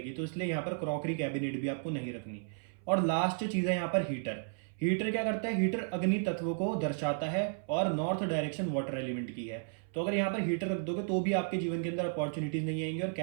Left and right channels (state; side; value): silent; left; 55 dB below the other